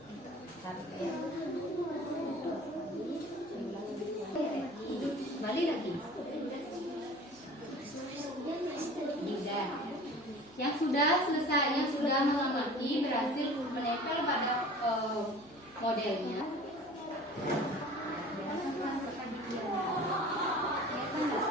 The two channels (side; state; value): right; noise; hum, 27 dB below the sound